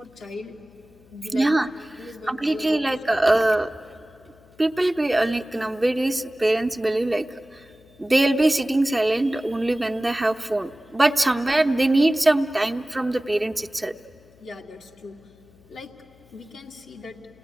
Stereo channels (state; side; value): noise; left; hum, 28 dB below the sound